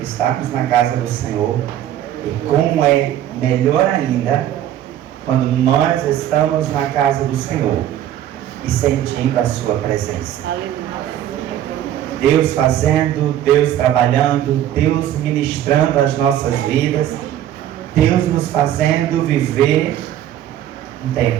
na casa do Senhor. E como é melhor ainda quando nós estamos na casa do Senhor e sentindo a sua presença. Deus fazendo, Deus trabalhando, Deus ministrando as nossas vidas, Deus nos fazendo viver um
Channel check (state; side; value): quieter; left; 11.6 dB